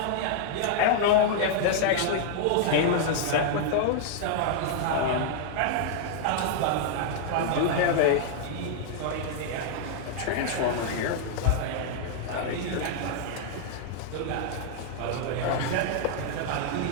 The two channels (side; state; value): both; different; correlation 0.00